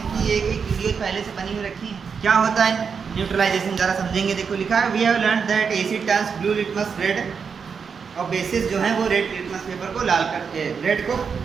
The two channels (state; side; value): quieter; left; 6.1 dB